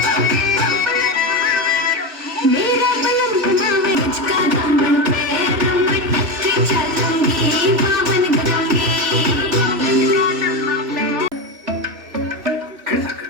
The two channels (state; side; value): late; left; 3.0 ms